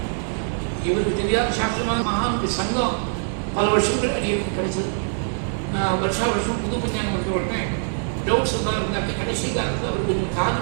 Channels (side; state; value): left; silent; digital silence